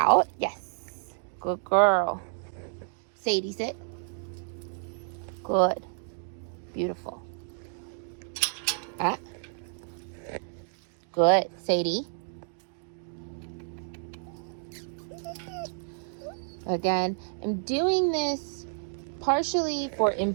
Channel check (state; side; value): silent; left; digital silence